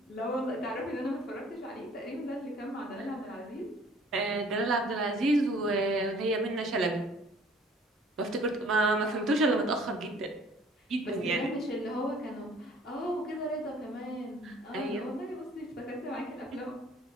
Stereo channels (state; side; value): normal; both; correlation 0.55